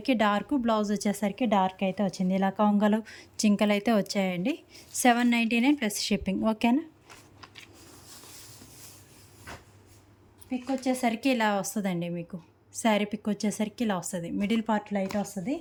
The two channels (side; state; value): both; identical; correlation 1.00